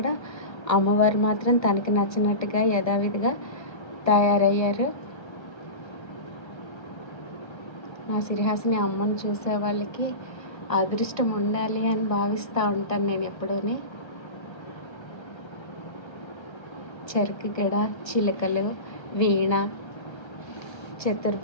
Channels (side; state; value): right; late; 1.3 ms